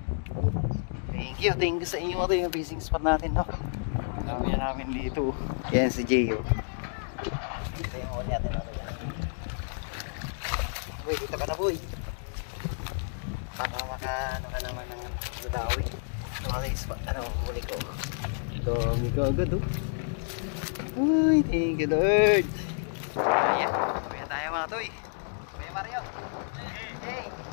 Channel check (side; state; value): right; silent; digital silence